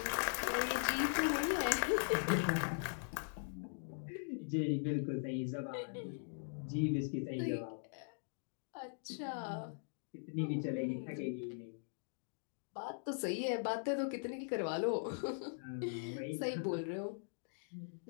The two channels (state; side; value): silent; right; digital silence